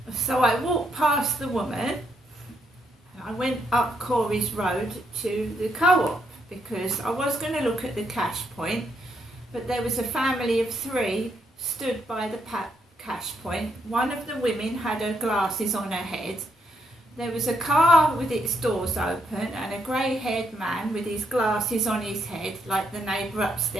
So I walked past the woman and I went up Corey's Road to the co-op because I was going to look at the cash point, but there was a family of 3 stood by the cash point. One of the women had her glasses on her head. There was a car with its doors open and a grey-haired man with his glasses on his head, like the neighbour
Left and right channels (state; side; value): normal; both; correlation 0.75